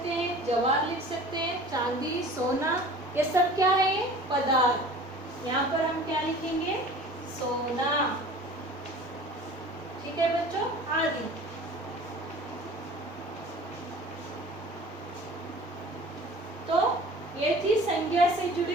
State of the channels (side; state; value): both; normal; correlation 0.43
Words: हैं, जवार लिख सकते हैं, चांदी, सोना, ये सब क्या है? ये पदार्थ। यहाँ पर हम क्या लिखेंगे? सोना। ठीक है बच्चों, आदि। तो ये थी संज्ञा से